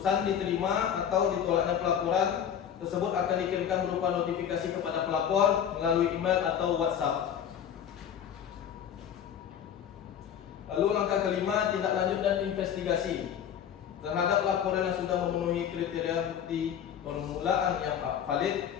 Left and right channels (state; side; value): quieter; right; 8.9 dB